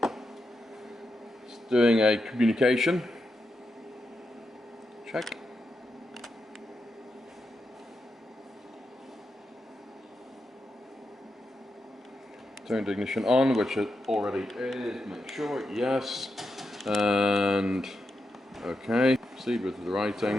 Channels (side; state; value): both; normal; correlation 0.86